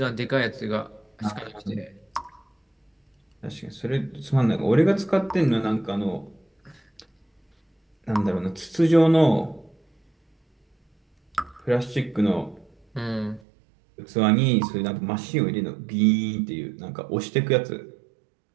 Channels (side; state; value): left; drops out; at 13.4 s